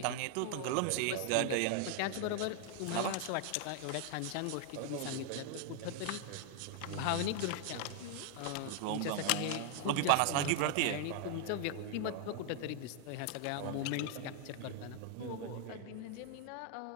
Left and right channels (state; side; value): different; both; correlation 0.00